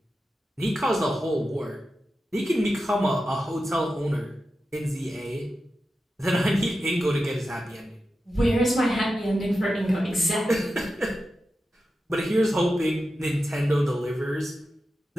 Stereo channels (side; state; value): both; normal; correlation 0.91